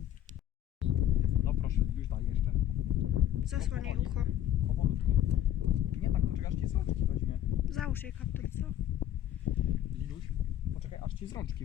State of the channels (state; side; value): quieter; right; 11.7 dB